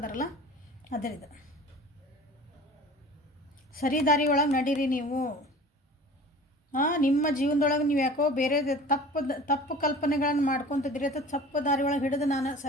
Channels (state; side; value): normal; both; correlation 0.42